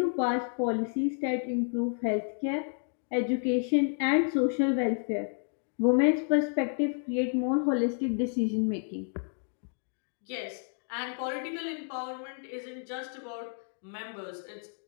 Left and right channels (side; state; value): right; silent; 57 dB below the other